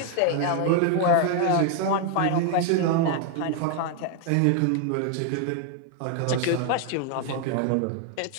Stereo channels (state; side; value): different; both; correlation 0.01